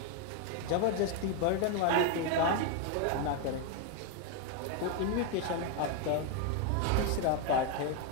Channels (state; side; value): different; both; correlation 0.01